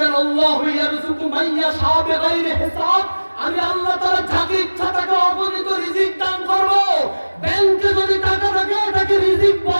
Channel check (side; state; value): both; inverted; correlation -1.00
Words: আল্লাহু ইয়ারযুকু মান ইয়াশা বিগাইরি হিসাব। আমি আল্লাহ তাআলা যাকে ইচ্ছা তাকে